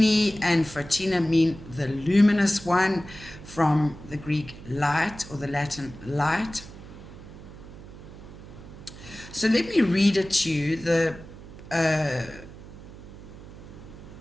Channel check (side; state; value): right; noise; hum, 16 dB below the sound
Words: and Fertina mean the luminous one, from the Greek light or the Latin light. So let me read it to you, the